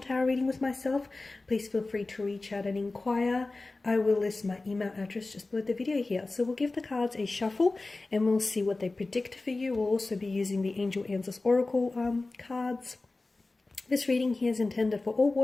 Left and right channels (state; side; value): quieter; right; 3.3 dB